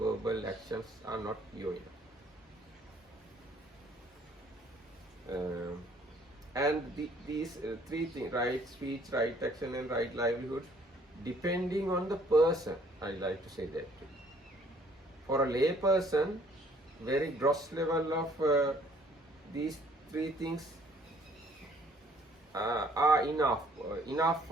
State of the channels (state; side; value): normal; both; correlation 0.60